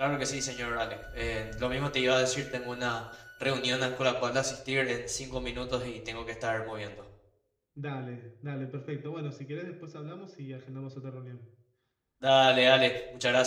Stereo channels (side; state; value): both; identical; correlation 1.00